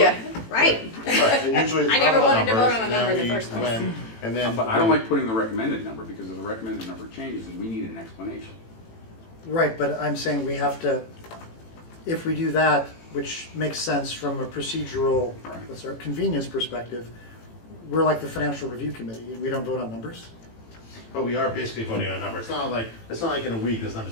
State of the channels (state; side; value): late; right; 18 ms